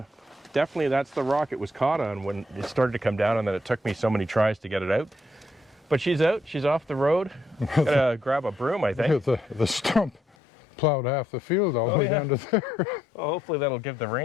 definitely that's the rock it was caught on when it started to come down, and then it took me so many tries to get it out. But she's out, she's off the road. Gotta grab a broom, I think. The stump plowed half the field all the way down to there. Well, hopefully that'll give the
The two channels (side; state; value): right; drops out; at 10.2 s